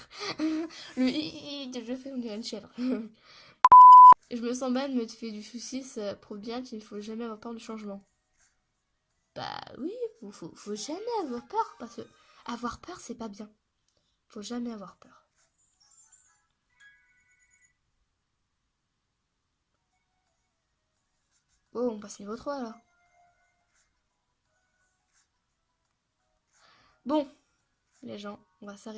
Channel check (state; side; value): identical; both; correlation 1.00